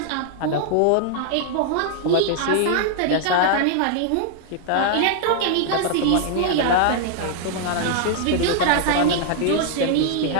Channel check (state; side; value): different; both; correlation -0.01